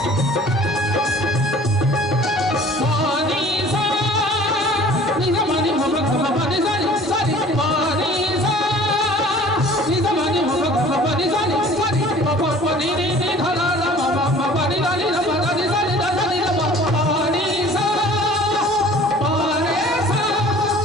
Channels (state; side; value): normal; both; correlation 0.48